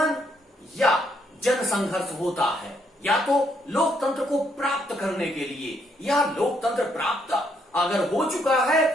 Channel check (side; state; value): both; normal; correlation 0.73